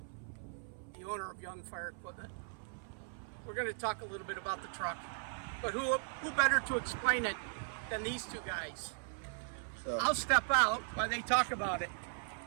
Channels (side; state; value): left; silent; 52 dB below the other